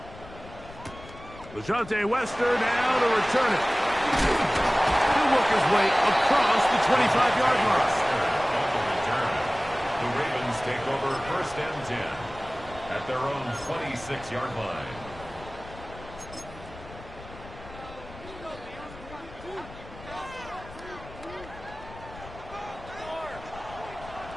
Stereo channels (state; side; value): noise; left; rumble, 17 dB below the sound